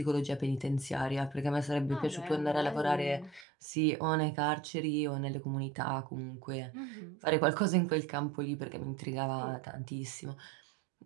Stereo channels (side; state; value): left; drops out; at 3.5 s